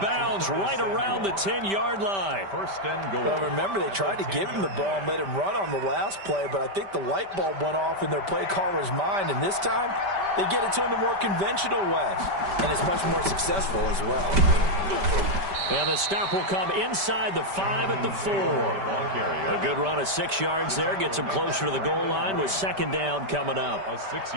bounds right around the 10-yard line. 1st and goal. Well, remember, they tried to give him the ball and let him run on the last play, but I think the light bulb went off in their play caller's mind, and this time they get it to him the more conventional way, and it's much more successful as well. And the stop will come inside the 5 at the 4. A good run of 6 yards there. Gets him closer to the goal line with 2nd down coming up.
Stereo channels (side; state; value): left; late; 5.1 ms